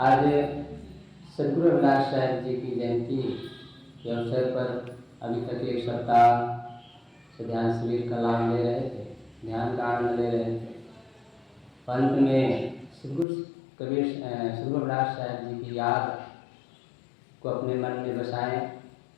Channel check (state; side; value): drops out; right; at 13.2 s